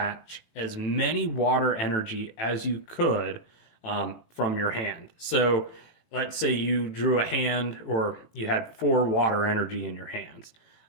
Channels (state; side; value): late; right; 18 ms